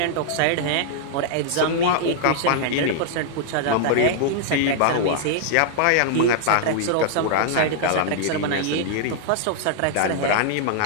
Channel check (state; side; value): different; both; correlation -0.01